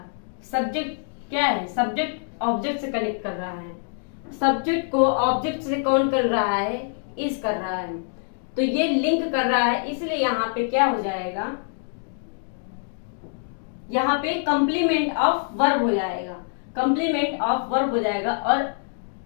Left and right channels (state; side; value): silent; right; digital silence